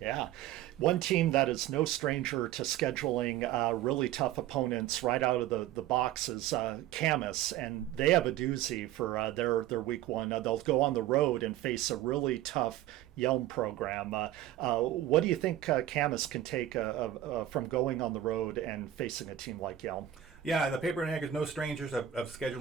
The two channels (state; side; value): quieter; left; 12.4 dB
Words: One team that is no stranger to scheduling really tough opponents right out of the box is Camas, and they have a doozy for their Week 1. They'll go on the road and face a really tough Yelm program. What do you think Camas can take from going on the road and facing a team like Yelm? Yeah, the Paper and Egg is no strangers of